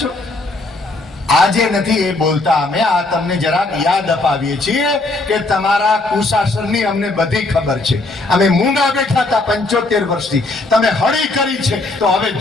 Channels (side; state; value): right; quieter; 3.0 dB